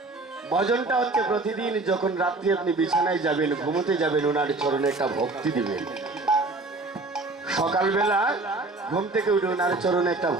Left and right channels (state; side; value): quieter; left; 3.3 dB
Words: ভজনটা হচ্ছে প্রতিদিন যখন রাত্রি আপনি বিছানায় যাবেন, ঘুমোতে যাবেন, ওনার চরণে একটা ভক্তি দিবেন। সকালবেলা ঘুম থেকে উঠে ওনার চরণে একটা